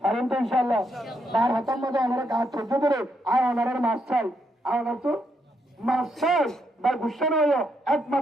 পারেন তো ইনশাআল্লাহ তার হাতের মধ্যে আমরা কাজ করতে ধরে আর ওনার মাছ চাই আর ওনার তো মাছ চাই বা গুসা নয়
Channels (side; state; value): both; normal; correlation 0.78